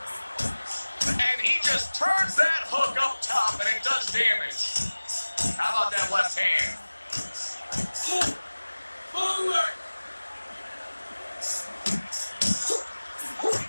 And he just turns that hook up top, and it does damage. How about that left hand? Forward!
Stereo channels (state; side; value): inverted; both; correlation -1.00